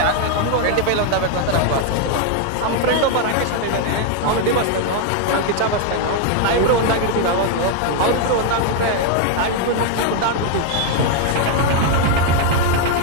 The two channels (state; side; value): different; both; correlation 0.01